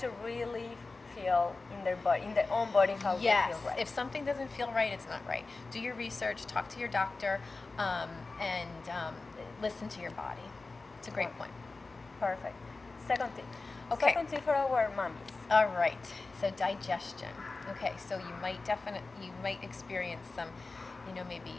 really feel in their body, in their own body, how they feel right. If something doesn't feel right, it's not right. Do your research, talk to your doctor, and listen to your body. It's a great point. Perfect. Second tip. Okay. Second tip for our mommies. All right. So digestion. Okay. So you might experience some, maybe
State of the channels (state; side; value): quieter; right; 3.7 dB